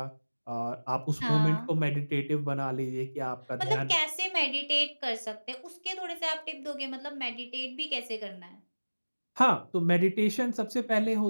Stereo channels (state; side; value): inverted; both; correlation -1.00